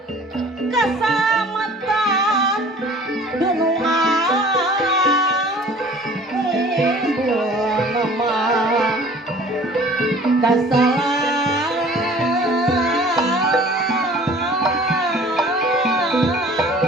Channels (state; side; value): normal; both; correlation 0.49